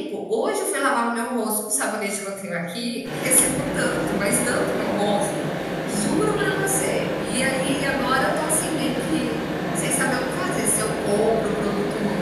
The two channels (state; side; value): identical; both; correlation 1.00